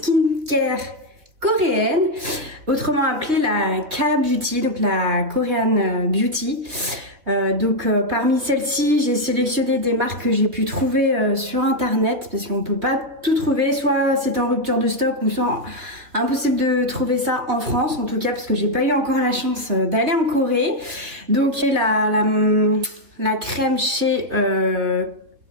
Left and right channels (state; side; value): late; left; 3.6 ms